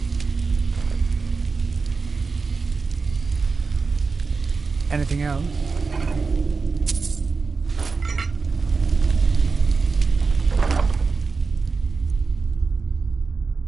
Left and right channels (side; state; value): left; quieter; 4.5 dB